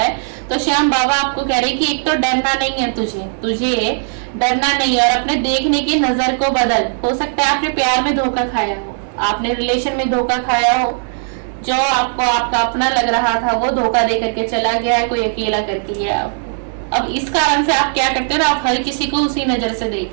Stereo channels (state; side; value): silent; left; 68 dB below the other